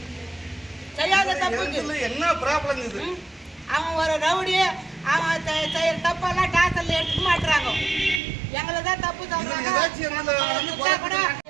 செய்யாத தப்புக்கு என்ன ப்ராப்ளம் இது? அவன் ஒரு ரவுடி, அவன் செய்யற தப்பெல்லாம் டாக்டர்ல எடுத்துக்க மாட்டுறாங்க. எங்களை தான் தப்பு சொல்றாங்க.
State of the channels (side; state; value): left; drops out; at 8.2 s